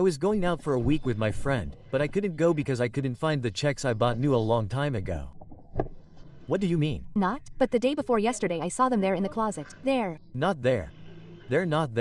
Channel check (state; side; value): identical; both; correlation 1.00